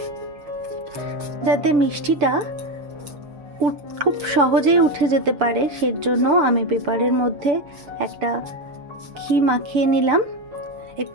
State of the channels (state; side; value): late; left; 6.9 ms